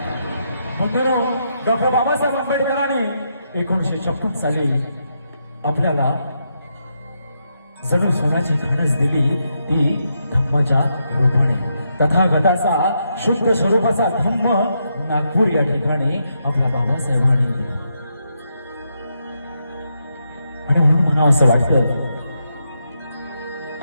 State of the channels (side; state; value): both; inverted; correlation -0.81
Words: बंधुरो, डॉक्टर बाबासाहेब आंबेडकरांनी 1956 साली आपल्याला जणू सोन्याची खाणच दिली ती धम्माच्या रूपाने। तथागताचा शुद्ध स्वरूपाचा धम्म नागपूर या ठिकाणी आपल्या बाबासाहेबांनी दिला। आणि म्हणून म्हणावं असं वाटतं